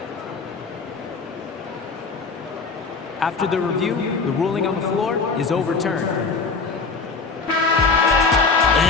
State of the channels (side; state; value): right; quieter; 4.5 dB